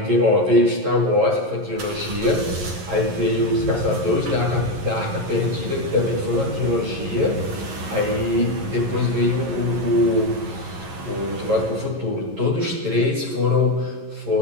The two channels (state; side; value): late; left; 11 ms